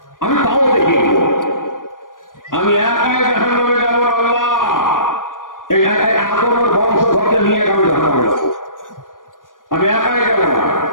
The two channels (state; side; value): late; right; 0.89 ms